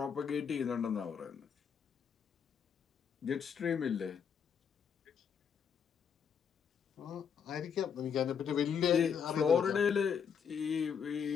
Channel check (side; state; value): right; quieter; 7.2 dB